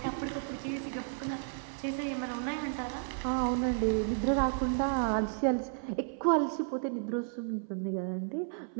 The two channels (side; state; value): left; silent; 56 dB below the other